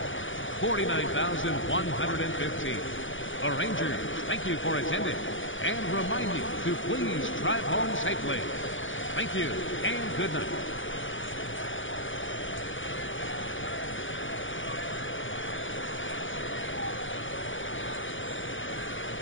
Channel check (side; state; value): right; late; 0.56 ms